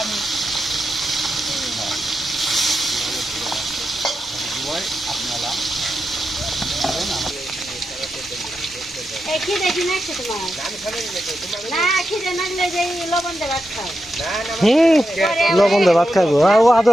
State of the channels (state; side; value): normal; both; correlation 0.88